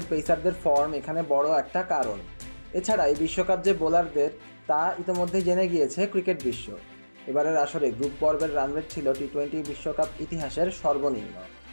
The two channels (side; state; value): both; inverted; correlation -1.00